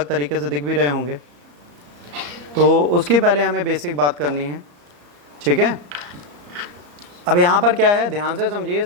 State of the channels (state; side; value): late; left; 34 ms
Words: तरीके से दिख भी रहे होंगे। तो उसकी पहले हमें बेसिक बात करनी है, ठीक है। अब यहाँ पर क्या है, ध्यान से समझिए।